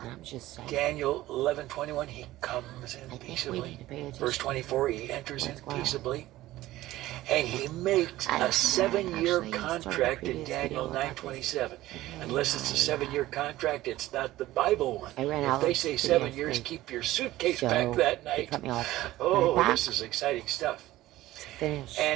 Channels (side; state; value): left; quieter; 16.2 dB